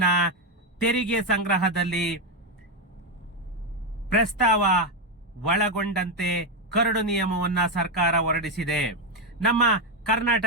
ತೆರಿಗೆ ಸಂಗ್ರಹದಲ್ಲಿ ಪ್ರಸ್ತಾವ ಒಳಗೊಂಡಂತೆ ಕರಡು ನಿಯಮವನ್ನ ಸರ್ಕಾರ ಹೊರಡಿಸಿದೆ. ನಮ್ಮ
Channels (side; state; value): both; normal; correlation 0.06